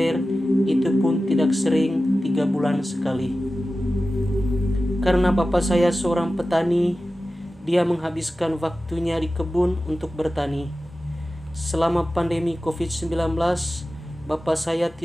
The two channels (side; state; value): both; normal; correlation 0.95